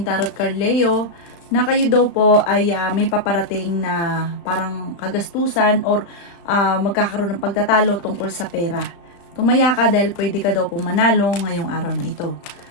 tarot card Leo, na kayo daw po ay may paparating na parang kagastusan or magkakaroon ng pagtatalo tungkol sa pera. Tumaya ka dahil pwede ka daw po manalo ngayong araw na ito.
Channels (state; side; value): late; right; 35 ms